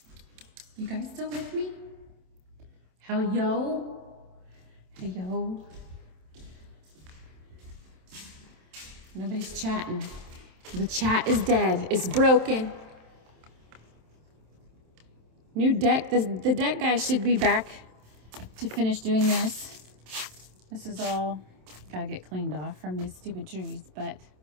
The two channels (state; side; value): late; left; 27 ms